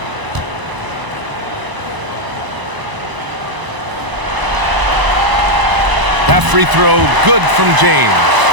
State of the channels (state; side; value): late; left; 1.0 ms